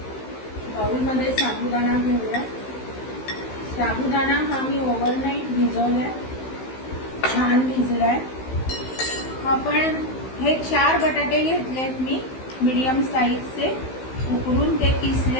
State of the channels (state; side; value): late; right; 15 ms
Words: बाउलमध्ये साबुदाणा घेऊया. साबुदाणा हा मी ओव्हरनाईट भिजवलाय, छान भिजलाय. आपण हे 4 बटाटे घेतलेत मी मीडियम साईजचे, उकडून ते